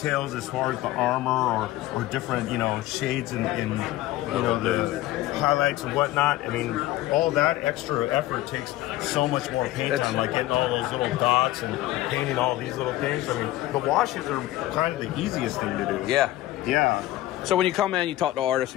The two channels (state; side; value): quieter; right; 15.9 dB